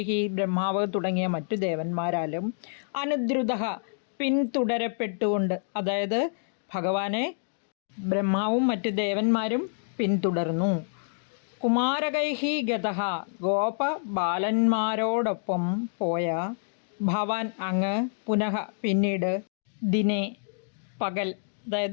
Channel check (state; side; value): silent; right; digital silence